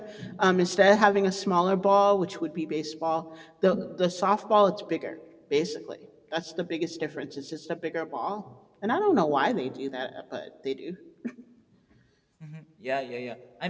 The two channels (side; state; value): both; identical; correlation 1.00